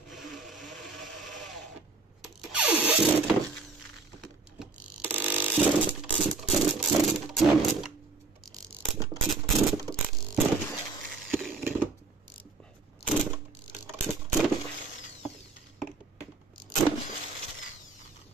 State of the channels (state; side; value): quieter; left; 4.1 dB